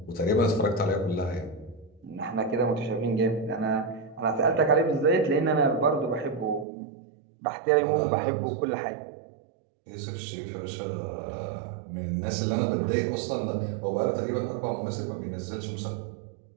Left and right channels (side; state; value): left; drops out; at 6.7 s